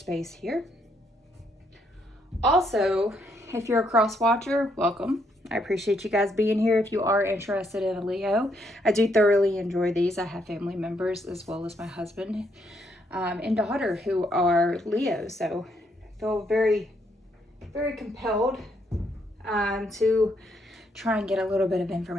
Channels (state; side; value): normal; both; correlation 0.74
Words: here. Also, if you're a cross watcher, welcome. I appreciate you guys being here. If you are interested in a Leo, I do thoroughly enjoy these. I have family members as well as my husband and daughter who are Leo, so I feel very, very compelled to try and get a little bit of